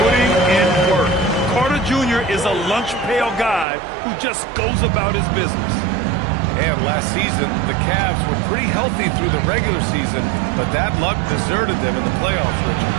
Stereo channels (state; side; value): drops out; left; at 3.7 s